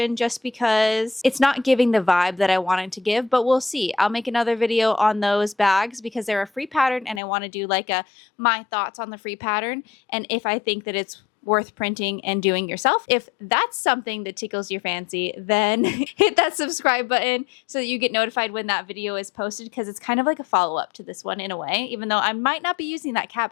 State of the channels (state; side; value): drops out; right; at 7.2 s